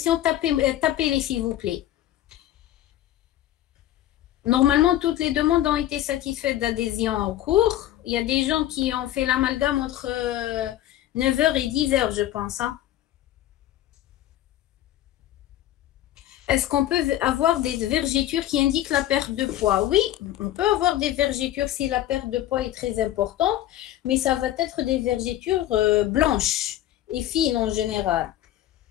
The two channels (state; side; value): quieter; right; 13.3 dB